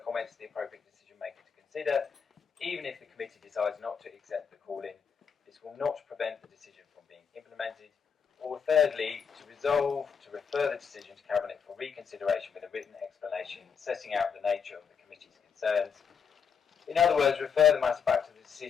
comments to the appropriate decision maker to consider, even if the committee decides not to accept the call-in. This will not prevent the decision from being implemented. Or thirdly, to resolve to refer the decision to Cabinet for reconsideration with a written explanation setting out the nature of the committee's concerns. In other words, refer the matter back to the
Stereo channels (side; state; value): right; quieter; 6.7 dB